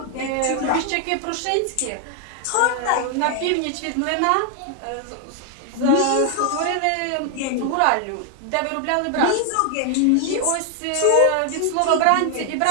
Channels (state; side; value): different; both; correlation 0.00